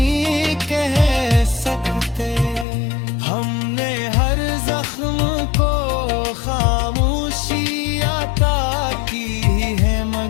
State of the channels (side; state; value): right; drops out; at 2.7 s